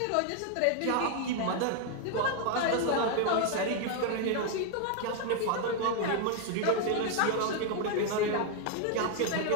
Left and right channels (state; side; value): different; both; correlation 0.00